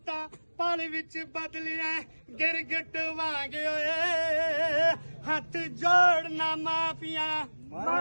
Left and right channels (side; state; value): both; inverted; correlation -1.00